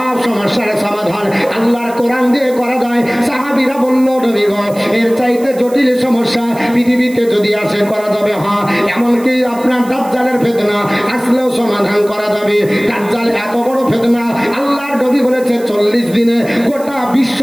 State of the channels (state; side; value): noise; right; hiss, 20 dB below the sound